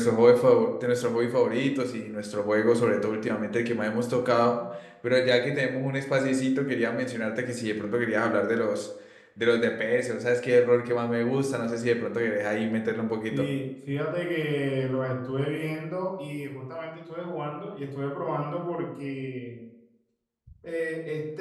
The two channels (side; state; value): both; identical; correlation 1.00